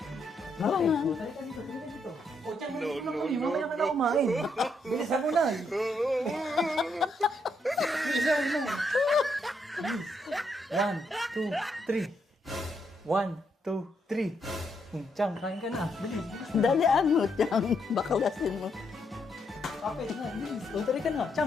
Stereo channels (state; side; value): normal; both; correlation 0.77